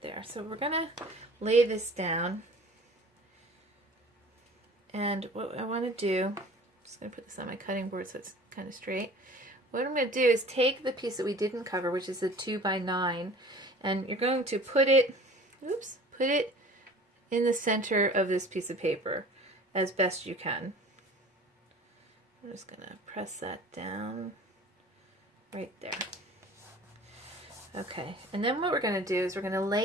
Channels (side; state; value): both; normal; correlation 0.45